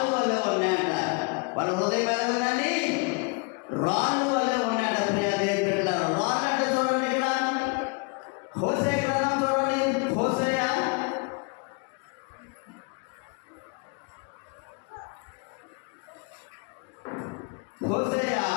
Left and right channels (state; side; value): quieter; right; 31.6 dB